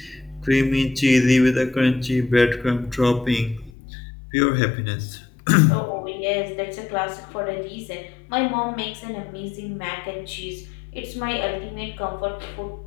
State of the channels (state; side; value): drops out; right; at 3.7 s